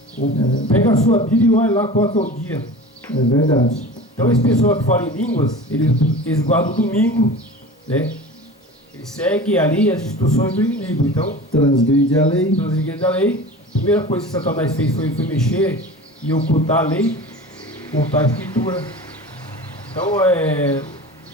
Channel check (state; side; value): normal; both; correlation 0.36